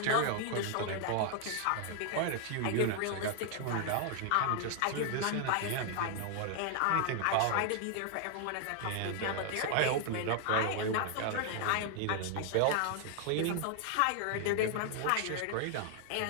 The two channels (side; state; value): both; different; correlation 0.00